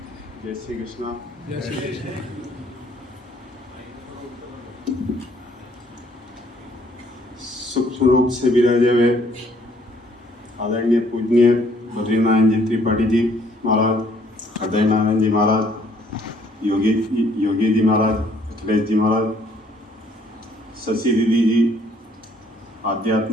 जय श्री कृष्णा। जय श्री कृष्ण। सूक्ष्म रूप से विराजे हुए आदरणीय पूजनीय बद्रीनारायण जी त्रिपाठी जी महाराज, हृदय नारायण जी महाराज, योगी जी महाराज, अखिलेश जी महाराज, शशि दीदी जी,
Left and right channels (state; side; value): normal; both; correlation 0.63